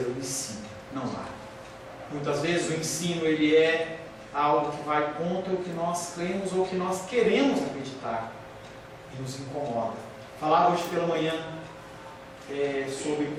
o ensino. Não há. Muitas vezes o ensino, ele é algo que vai contra o que nós cremos ou o que nós queremos acreditar e nos incomoda. Falava hoje pela manhã sobre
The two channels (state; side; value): identical; both; correlation 1.00